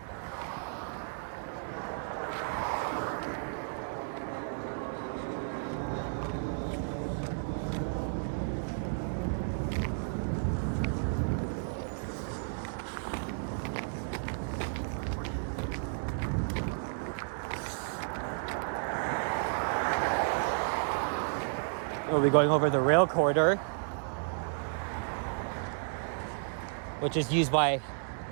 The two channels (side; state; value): left; silent; digital silence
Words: We'll be going over the rail corridor, which is used by